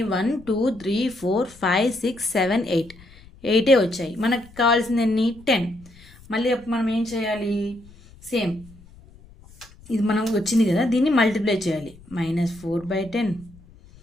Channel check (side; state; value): left; noise; rumble, 23 dB below the sound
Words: 1 2 3 4 5 6 7 8. 8 వచ్చాయి. మనకు కావాల్సింది ఎన్ని? 10. మళ్ళీ మనం ఏం చేయాలి? సేమ్ ఇది మనం వచ్చింది కదా, దీన్ని మల్టిప్లై చేయాలి.